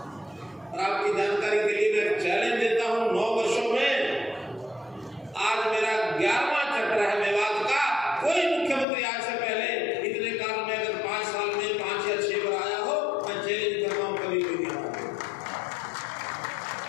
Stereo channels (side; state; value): right; drops out; at 8.8 s